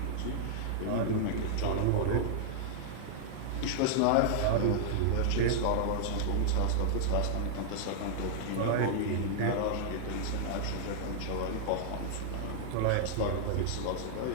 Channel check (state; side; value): different; both; correlation -0.01